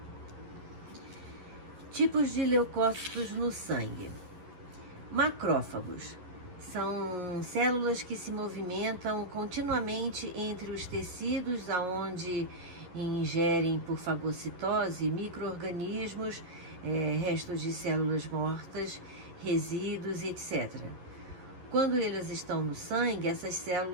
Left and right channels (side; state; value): left; late; 11 ms